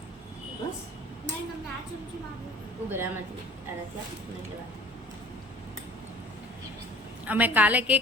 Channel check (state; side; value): normal; both; correlation 0.47